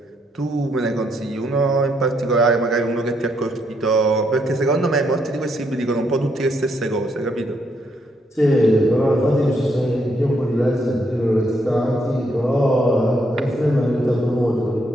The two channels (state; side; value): normal; both; correlation 0.75